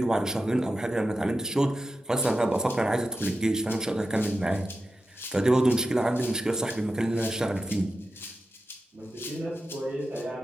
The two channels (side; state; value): both; normal; correlation 0.91